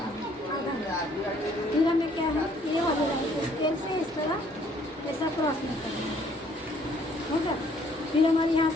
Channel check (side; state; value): both; normal; correlation 0.63